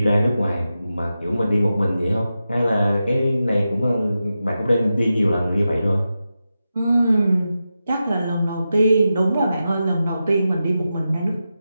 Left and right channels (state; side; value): inverted; both; correlation -0.91